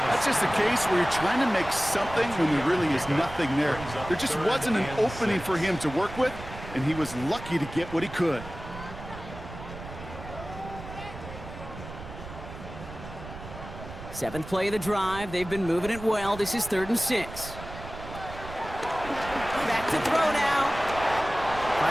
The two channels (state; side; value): noise; right; rumble, 12 dB below the sound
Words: That's just a case where you're trying to make something when there really is nothing there. There just wasn't an opening for him to work with, and he was lucky to get what he could. Seventh play of the drive. They've been moving it well. This is 3rd and 6. Back to throw now.